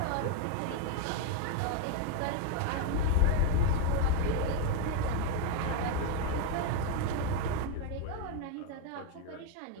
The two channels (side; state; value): both; different; correlation 0.01